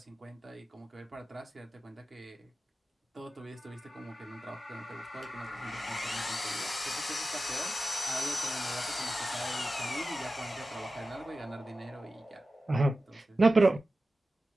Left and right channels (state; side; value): normal; both; correlation 0.94